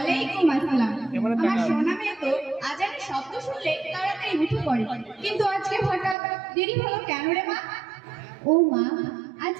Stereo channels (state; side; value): drops out; left; at 6.2 s